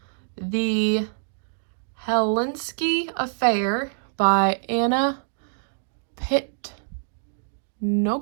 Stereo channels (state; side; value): silent; left; digital silence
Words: The Helsinki Affair by Anna